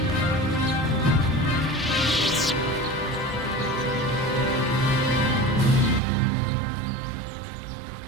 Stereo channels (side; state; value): left; drops out; at 6.0 s